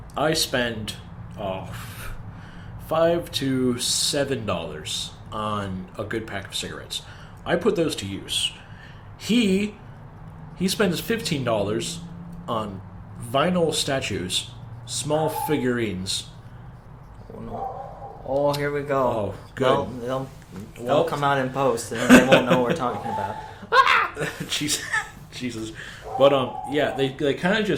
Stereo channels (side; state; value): both; identical; correlation 1.00